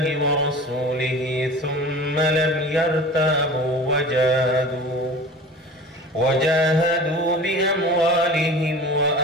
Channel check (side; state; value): both; normal; correlation 0.38